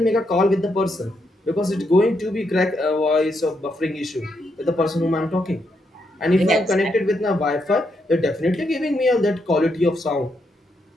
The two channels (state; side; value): normal; both; correlation 0.79